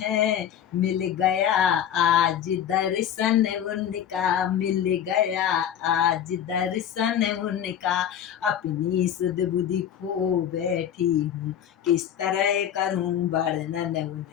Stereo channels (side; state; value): right; quieter; 9.6 dB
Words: मिल गया आज दर्शन उनका, मिल गया आज दर्शन उनका। अपनी सुध बुद्धि खो बैठी हूँ, किस तरह करूँ वर्णन